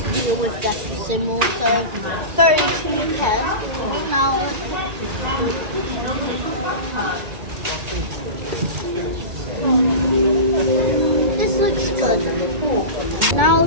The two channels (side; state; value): left; late; 1.8 ms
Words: deal with decimal. So 32 pence. Now this looks good.